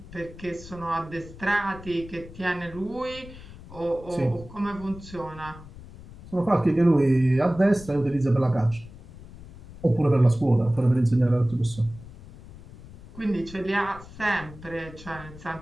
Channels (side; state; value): left; noise; rumble, 17 dB below the sound